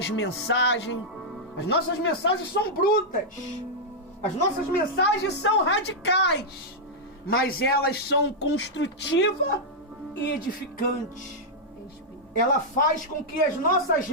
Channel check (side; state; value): both; normal; correlation -0.06